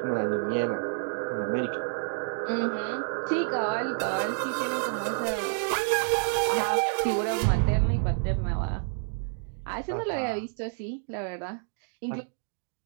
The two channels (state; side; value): silent; left; 59 dB below the other